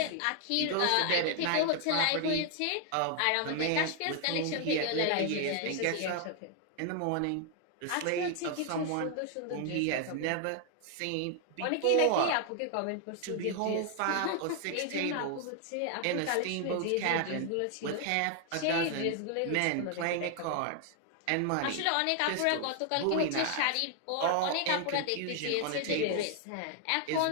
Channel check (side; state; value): both; different; correlation 0.00